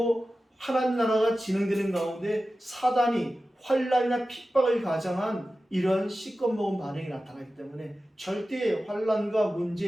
하나님 나라가 진행되는 가운데 사단이 환난이나 핍박을 가장한 이런 시꺼 먹은 반응이 나타나기 때문에 절대 환난과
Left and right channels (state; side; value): normal; both; correlation 0.94